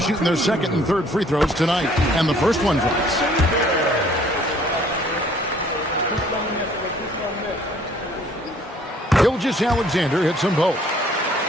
their second and third free throws tonight, and the first one drops. Gilgeous-Alexander hits them both.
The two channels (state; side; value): normal; both; correlation 0.58